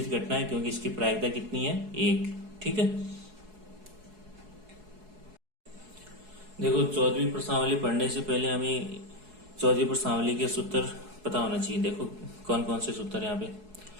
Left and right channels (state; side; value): late; left; 4.7 ms